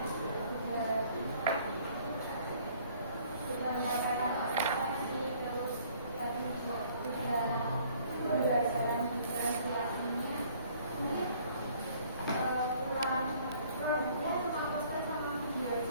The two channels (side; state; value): both; inverted; correlation -0.58